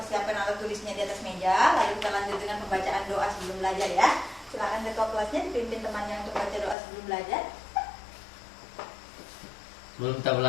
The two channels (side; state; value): right; drops out; at 6.8 s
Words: alat tulisnya di atas meja. Lalu kita lanjut dengan pembacaan doa sebelum belajar ya. Silakan ketua kelasnya dipimpin temannya untuk baca doa sebelum belajar. Sebelum kita